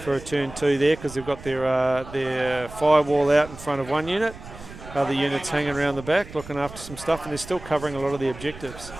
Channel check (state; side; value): noise; right; rumble, 16 dB below the sound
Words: for a turn 2 there, because they've got their firewall out in front of one unit, other units hanging around the back looking after some stuff, and they're still covering a lot of the objectives.